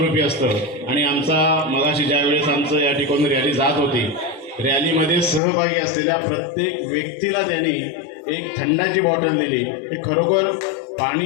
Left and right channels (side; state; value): right; drops out; at 5.4 s